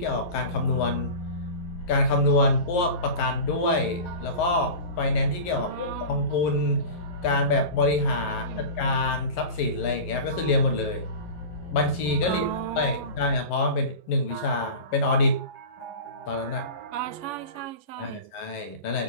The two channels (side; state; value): right; late; 11 ms